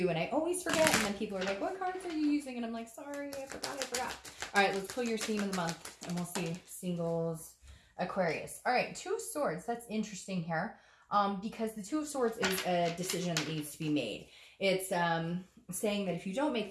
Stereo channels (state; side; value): identical; both; correlation 1.00